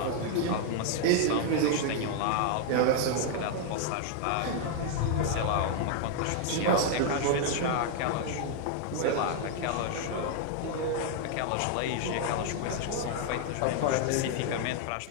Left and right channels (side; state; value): both; different; correlation 0.00